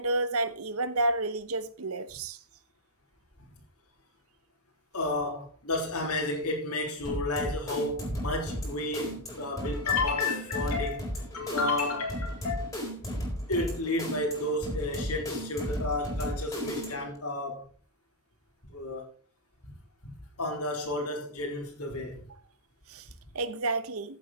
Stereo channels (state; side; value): normal; both; correlation -0.04